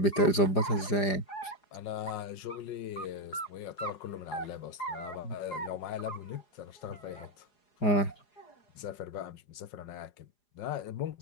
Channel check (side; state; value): right; late; 4.9 ms